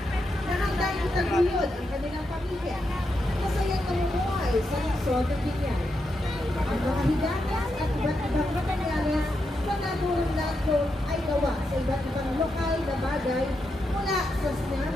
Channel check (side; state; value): both; normal; correlation 0.84